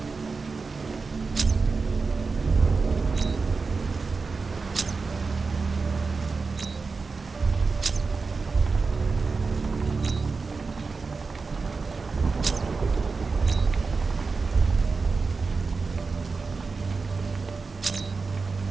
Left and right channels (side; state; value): left; quieter; 4.4 dB